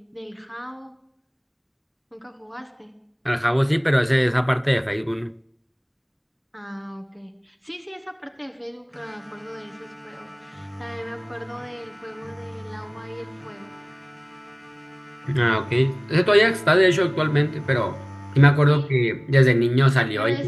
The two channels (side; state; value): both; identical; correlation 1.00